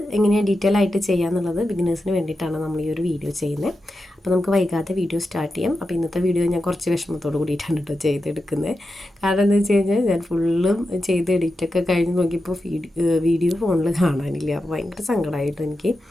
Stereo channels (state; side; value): normal; both; correlation 0.90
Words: എങ്ങനെയാണ് ഡീറ്റെയിൽ ആയിട്ട് ചെയ്യാന്നുള്ളത് ബിഗിനേഴ്സിന് വേണ്ടിയിട്ടാണ് നമ്മൾ ഈ ഒരു വീഡിയോ ചെയ്യുന്നത്. അപ്പോൾ നമുക്ക് വൈകാതെ വീഡിയോ സ്റ്റാർട്ട് ചെയ്യാം. അപ്പോൾ ഇന്നത്തെ വീഡിയോ ഞാൻ കുറച്ച് വിഷമത്തോട് കൂടിയിട്ടാണ് കേട്ടോ ചെയ്തെടുക്കുന്നത്. കാരണം എന്താ വെച്ച് കഴിഞ്ഞാൽ ഞാൻ ഫുള്ളും ചെയ്ത് എഡിറ്റൊക്കെ കഴിഞ്ഞ് നോക്കിയപ്പോൾ വീഡിയോ ഫോണിൽ കാണാനില്ല. അപ്പോൾ ഭയങ്കര സങ്കടമായിട്ടോ എനിക്ക്.